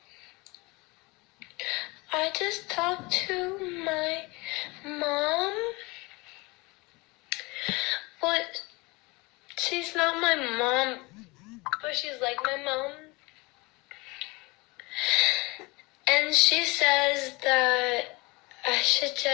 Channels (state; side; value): quieter; right; 24.9 dB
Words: I just talked to my mom, but she's not my mom, but she's like my mom. And she says that I should